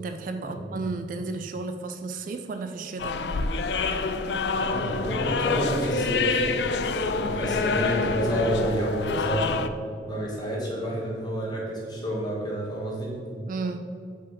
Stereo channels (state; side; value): normal; both; correlation 0.32